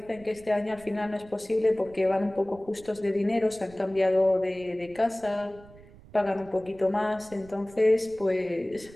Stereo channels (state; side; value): noise; right; rumble, 22 dB below the sound